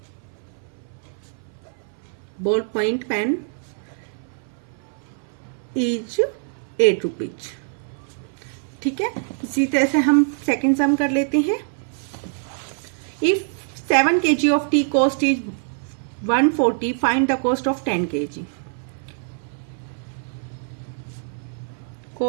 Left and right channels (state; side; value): silent; left; 60 dB below the other